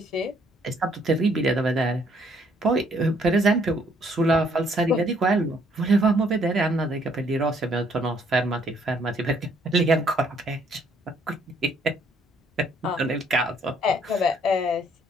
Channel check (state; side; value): normal; both; correlation 0.66